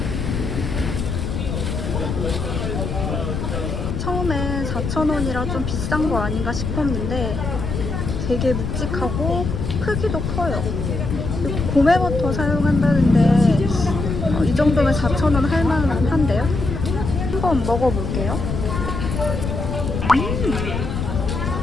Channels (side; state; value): left; noise; rumble, 3 dB below the sound